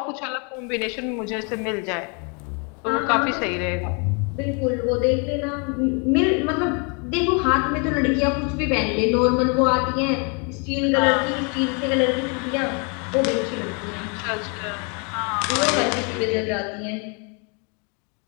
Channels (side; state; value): right; quieter; 35.4 dB